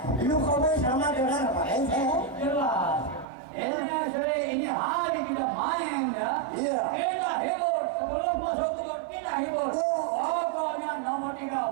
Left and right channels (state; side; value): drops out; left; at 3.2 s